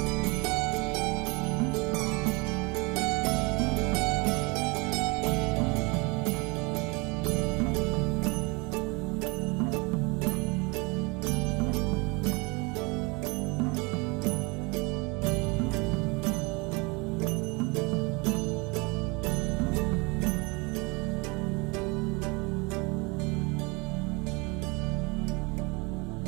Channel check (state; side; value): quieter; left; 28.1 dB